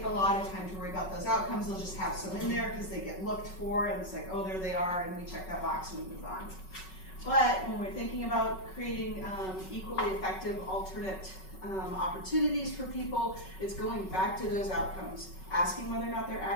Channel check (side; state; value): right; late; 5.4 ms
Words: a lot of time to worry about those outcomes. They'll just have some in there because they get looked for, and it's like, oh, there they are, and we check that box and we move on. But when we're thinking about creating equally effective alternate opportunities for people, it's going back to those outcomes, asking whether or not they're